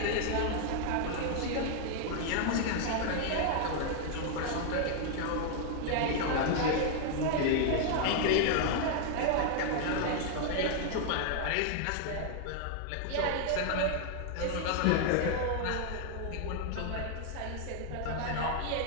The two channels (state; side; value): different; both; correlation 0.00